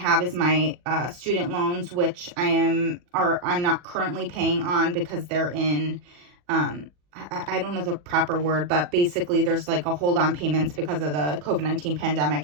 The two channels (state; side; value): late; left; 40 ms